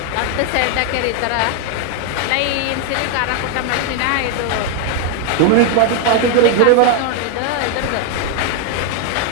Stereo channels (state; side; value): different; both; correlation 0.00